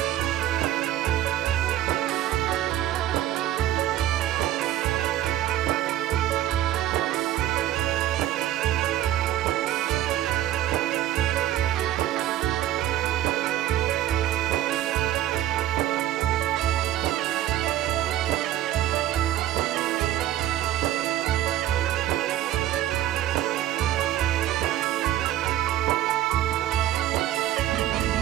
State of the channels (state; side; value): quieter; left; 12.9 dB